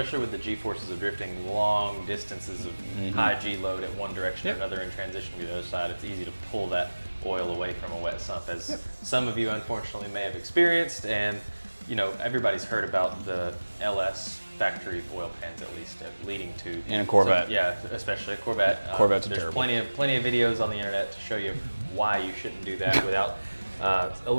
with the G-forces of drifting long distances of high G load at one direction or another and transitioning to the other side, it's easy to pull that oil away from a wet sump, as some of you unfortunately may have experienced. And everybody's heard about the LS factory oil pans, at least leading to in a Corvette. Especially a Corvette. There's plenty of videos on the internet to show you why you shouldn't do that without a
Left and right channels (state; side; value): inverted; both; correlation -1.00